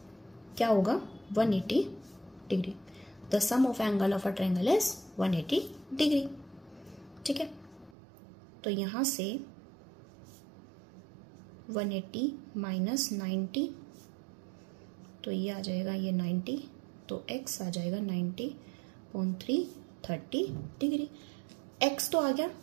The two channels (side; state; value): left; drops out; at 8.0 s